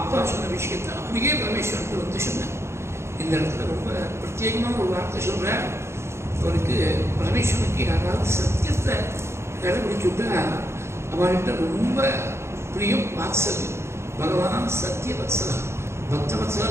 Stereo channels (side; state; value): left; late; 0.13 ms